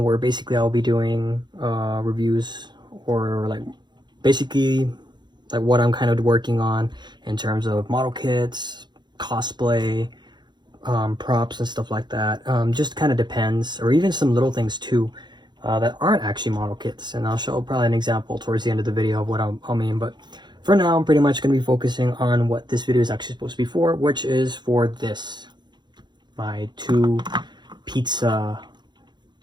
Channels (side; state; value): left; late; 0.21 ms